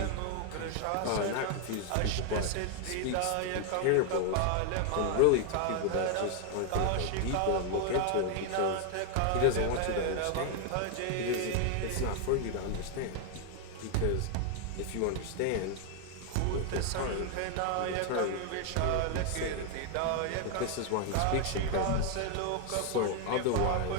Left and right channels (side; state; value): both; different; correlation 0.00